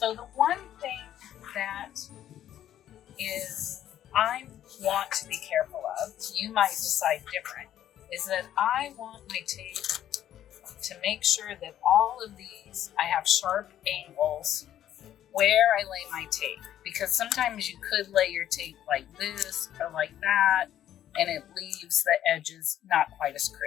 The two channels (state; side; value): quieter; right; 11.4 dB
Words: the one thing that is I want you might decide different, is that I want my tape to make sure that all of these, I have sharp angles where I lay my tape, because sometimes you could lay your tape like this or like that, and it leaves the edges not quite as